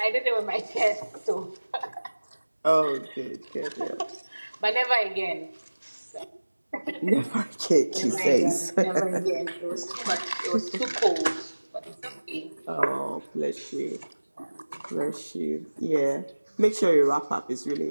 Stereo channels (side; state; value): both; inverted; correlation -1.00